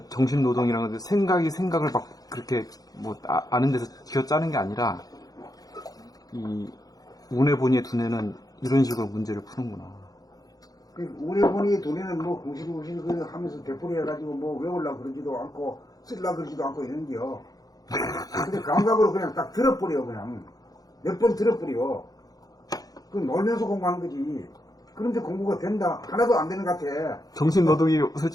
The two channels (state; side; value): late; right; 0.18 ms